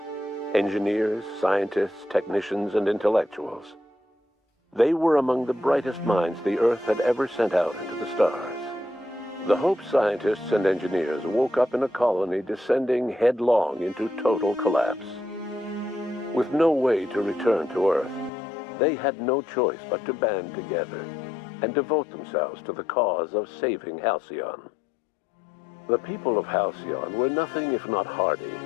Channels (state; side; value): drops out; right; at 18.3 s